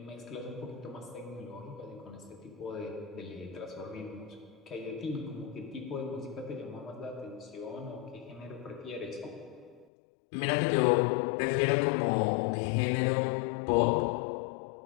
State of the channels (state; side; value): drops out; right; at 9.9 s